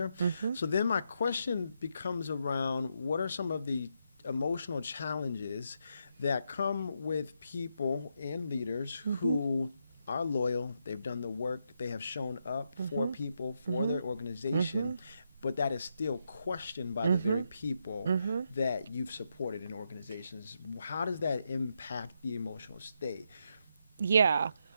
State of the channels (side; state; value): both; inverted; correlation -0.81